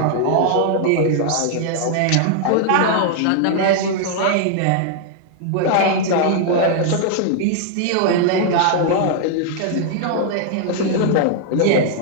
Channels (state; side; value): different; both; correlation 0.00